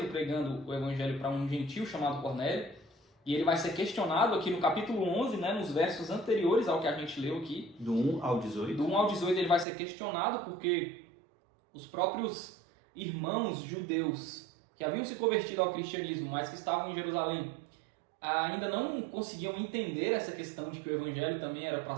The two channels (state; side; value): drops out; left; at 9.7 s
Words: pregando o Evangelho para um gentio chamado Cornélio, e ele vai ser questionado aqui no capítulo 11, né, nos versos anteriores ao que a gente leu aqui. Do 1 ao 18. Do 1 ao 18 ele vai ser questionado porque os próprios irmãos judeus que haviam se convertido ao cristianismo, mas que estavam em Jerusalém, ainda não conseguiam entender essa questão de que o Evangelho também era para